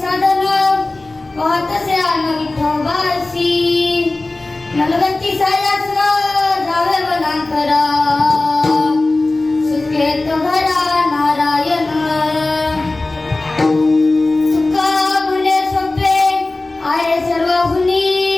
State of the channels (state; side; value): quieter; right; 3.0 dB